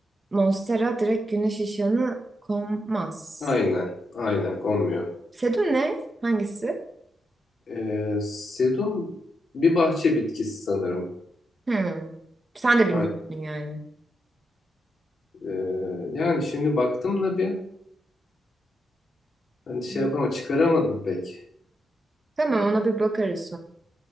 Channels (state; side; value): normal; both; correlation 0.83